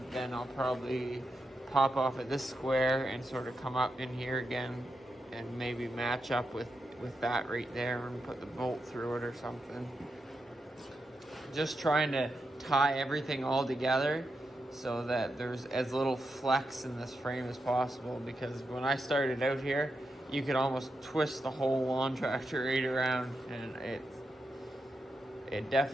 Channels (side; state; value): both; normal; correlation 0.86